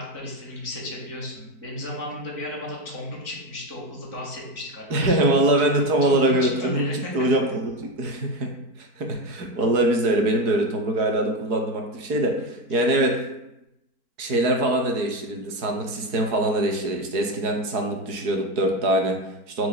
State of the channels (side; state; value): left; late; 4.5 ms